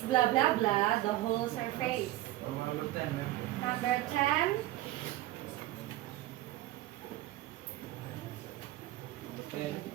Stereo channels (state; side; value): quieter; left; 15.9 dB